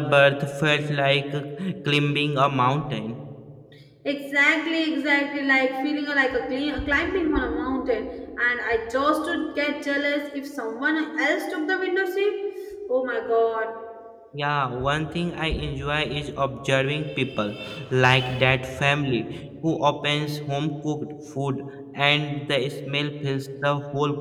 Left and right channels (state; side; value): identical; both; correlation 1.00